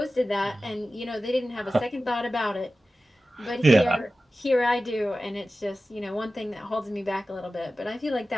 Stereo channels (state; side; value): normal; both; correlation 0.95